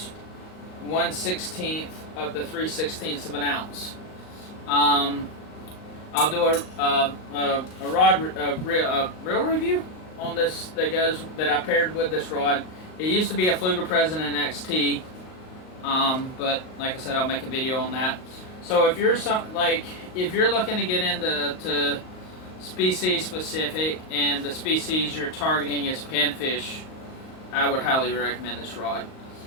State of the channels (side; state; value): right; late; 38 ms